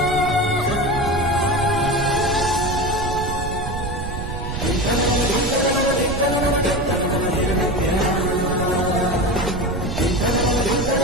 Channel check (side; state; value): right; noise; rumble, 6 dB below the sound